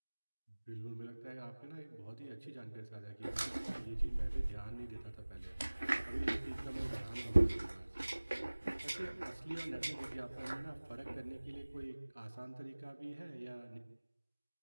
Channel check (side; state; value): both; inverted; correlation -1.00